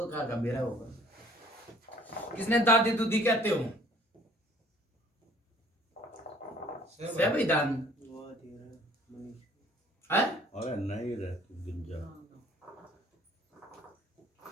कहा का बेरा होगा किसने दादी दूधी कहते हो से भाई दान है अरे नहीं रह तू गिंजा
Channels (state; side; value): normal; both; correlation 0.55